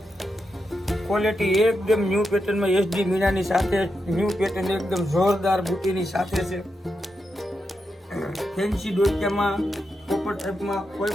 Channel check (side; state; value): both; normal; correlation 0.86